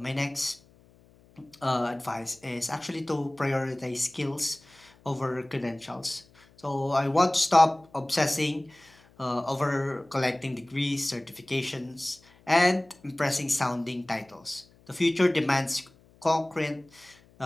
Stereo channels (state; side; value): noise; left; hum, 29 dB below the sound